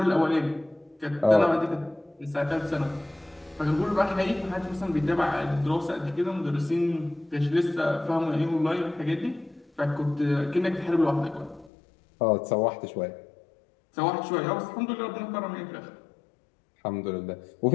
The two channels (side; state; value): right; drops out; at 11.7 s